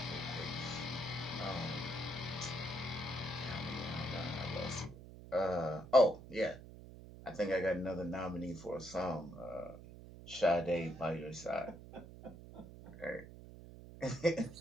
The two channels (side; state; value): right; noise; hum, 15 dB below the sound